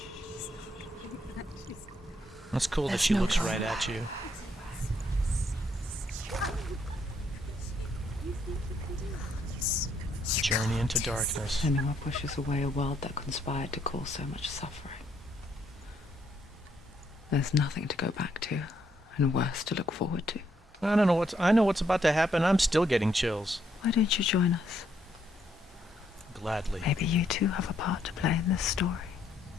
That's cool that There's she no looks going right back. at you. Journey into darkness. Senua pushes away a world that conspired to cause so much suffering. There's nothing to go back to, and worse to look forward to. I don't know I know what's about to happen. I'm still getting chills. Why don't you join us? Gladly. Maybe you too have a part to play in this story.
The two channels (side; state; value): both; normal; correlation 0.73